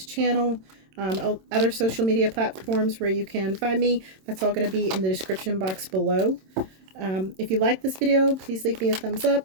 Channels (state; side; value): late; left; 27 ms